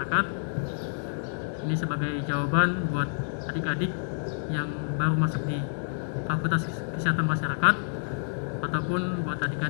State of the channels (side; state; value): right; silent; digital silence